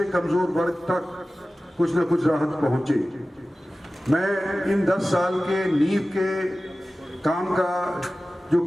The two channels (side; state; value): both; normal; correlation 0.96